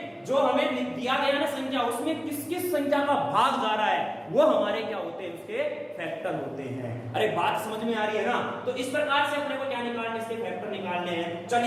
जो हमें दिया गया ना संख्या, उसमें किस किस संख्या का भाग जा रहा है वो हमारे क्या होते हैं? उसके फैक्टर होते हैं। अरे बात समझ में आ रही है ना? तो इस प्रकार से अपने को क्या निकालने? इसके फैक्टर निकालने हैं।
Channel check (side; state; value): both; identical; correlation 1.00